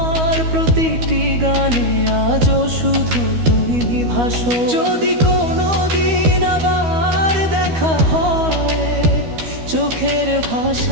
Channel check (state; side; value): late; left; 12 ms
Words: প্রতিটি গানে, আজও শুধু তুমি ভাসো। যদি কোনো দিন আবার দেখা হয়, চোখের